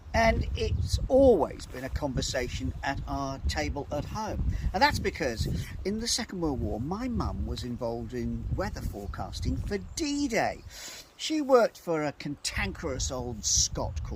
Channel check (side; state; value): both; identical; correlation 1.00